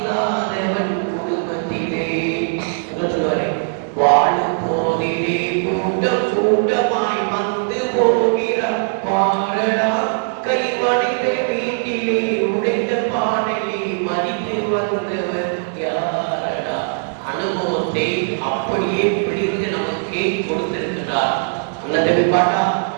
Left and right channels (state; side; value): silent; left; digital silence